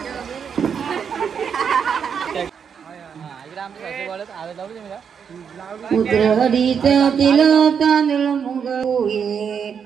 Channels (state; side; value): quieter; left; 7.1 dB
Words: उतरडीच तिल तांदूळ मुग